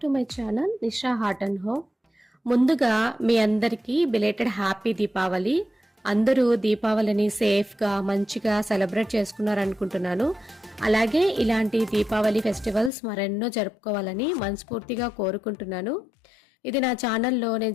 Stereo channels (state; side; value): drops out; right; at 12.9 s